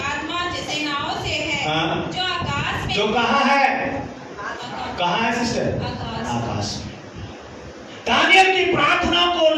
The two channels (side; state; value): both; identical; correlation 1.00